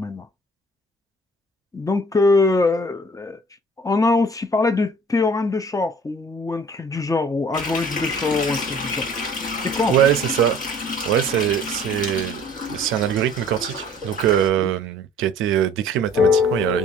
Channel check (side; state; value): both; normal; correlation 0.52